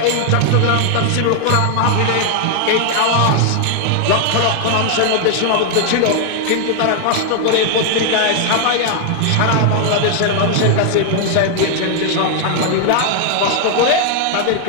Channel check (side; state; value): both; different; correlation 0.00